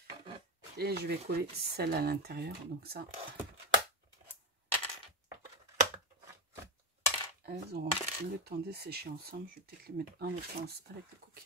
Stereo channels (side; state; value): both; normal; correlation 0.15